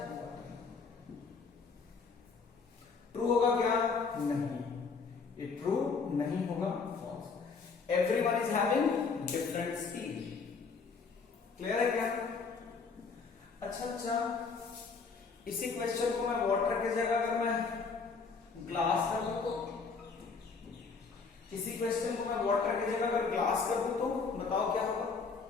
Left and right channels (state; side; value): quieter; right; 5.0 dB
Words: ट्रू होगा क्या? नहीं, ये ट्रू नहीं होगा, false. Everyone is having different speed. Clear है क्या? अच्छा, इसी क्वेश्चन को मैं वाटर की जगह अगर मैं ग्लास कर दूं तो, इसी क्वेश्चन को मैं वाटर की जगह अगर ग्लास कर दूं तो बताओ क्या होगा?